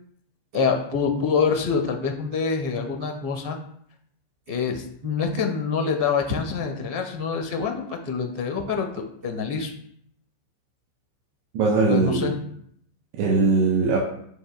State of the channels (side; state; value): left; late; 15 ms